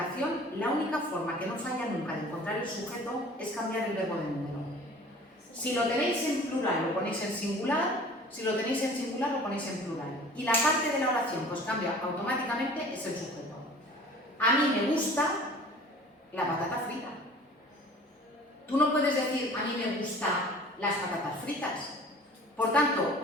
la única forma que no falla nunca de encontrar el sujeto es cambiar el verbo de número. Si lo tenéis en plural, lo ponéis en singular. Si lo tenéis en singular, lo ponéis en plural. Y la parte de la oración que os cambia automáticamente es el sujeto. A mí me gusta la patata frita. Tú no puedes decir, a mí me gustan las patatas fritas. Por tanto,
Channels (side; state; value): both; normal; correlation 0.46